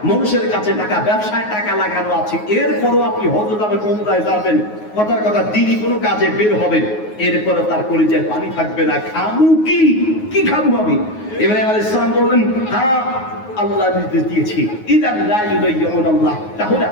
মানুষের কাছে টাকা, ব্যবসায় টাকা লাগানো আছে। এরপরও আপনি হজ যাবেন, উমরায় যাবেন, কথার কথা দিনই কোনো কাজে বের হবেন, এরপরে তার কলিজায় পানি থাকবে না। খামু কি? কি খামু আমি? ইব্রাহিম আলাইহিস সালাম বললেন, হ্যাঁ আল্লাহ নির্দেশ দিয়েছি, ইদান লা ইউদাইয়ুন আল্লাহ, তাহলে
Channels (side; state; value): right; late; 9.5 ms